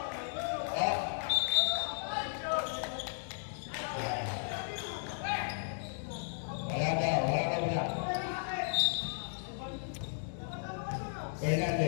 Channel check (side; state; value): right; silent; digital silence